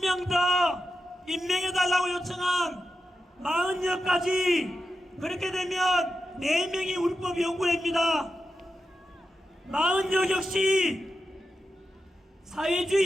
더 임명해달라고 요청한 40여까지 그렇게 되면 4명이 우리법연구회입니다. 40여 역시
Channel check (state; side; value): normal; both; correlation 0.89